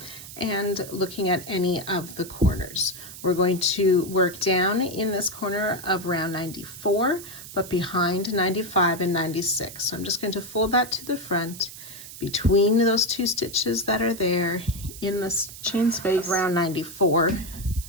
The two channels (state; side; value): noise; right; hiss, 14 dB below the sound